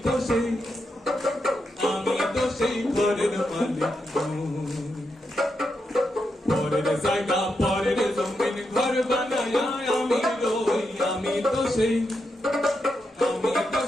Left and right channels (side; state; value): both; normal; correlation 0.84